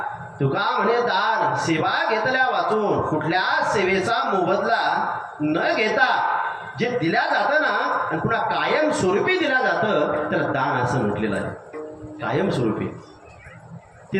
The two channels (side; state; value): both; identical; correlation 1.00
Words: तुका म्हणे दान सेवा घेतल्या वाचून, कुठल्या सेवेचा मोबदला न घेता जे दिल्या जातं ना आणि पुन्हा कायम स्वरूपी दिल्या जातं त्याला दान असं म्हटलेलं आहे. कायम स्वरूपी ते